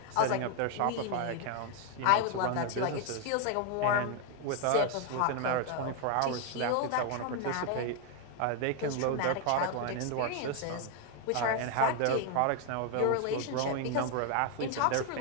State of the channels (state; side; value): different; both; correlation 0.00